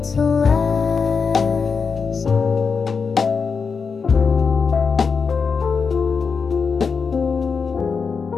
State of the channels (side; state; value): right; quieter; 5.4 dB